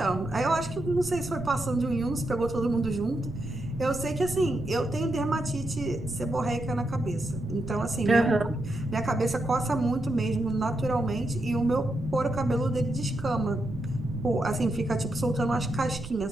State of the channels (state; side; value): noise; right; rumble, 12 dB below the sound